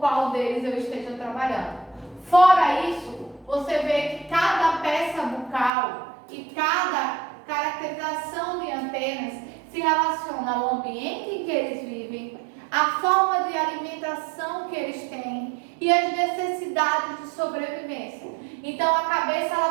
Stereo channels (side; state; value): left; drops out; at 5.7 s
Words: deles eu esteja trabalhando. Fora isso, você vê que cada peça bucal e cada caracterização de antenas se relaciona ao ambiente em que eles vivem, a forma de alimentação que eles têm e as necessidades de sobrevivência. Então a cabeça